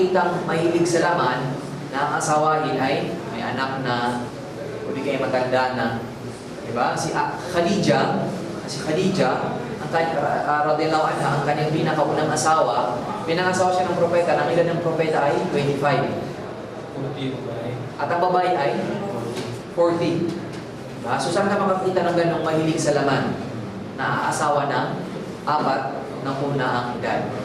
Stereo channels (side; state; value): both; identical; correlation 1.00